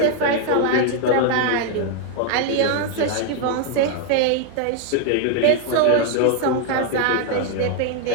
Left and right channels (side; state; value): both; different; correlation 0.00